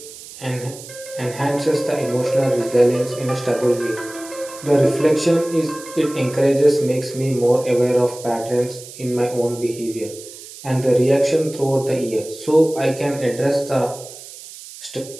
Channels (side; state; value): right; noise; hiss, 16 dB below the sound